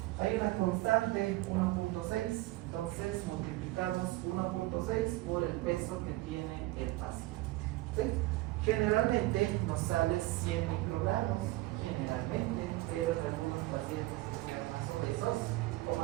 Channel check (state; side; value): quieter; left; 18.9 dB